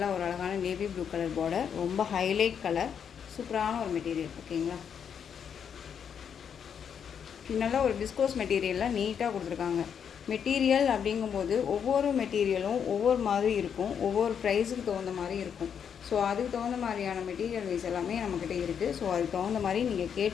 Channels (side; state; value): right; quieter; 7.7 dB